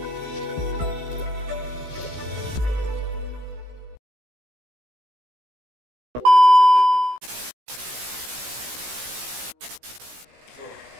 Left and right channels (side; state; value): left; late; 16 ms